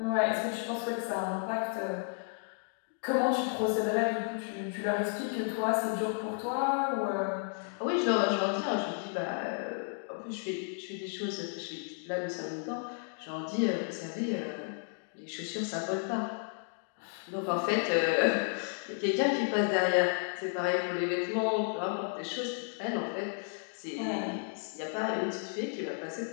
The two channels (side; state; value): right; silent; 56 dB below the other